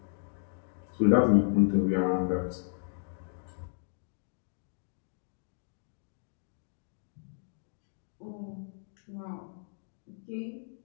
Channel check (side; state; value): right; silent; digital silence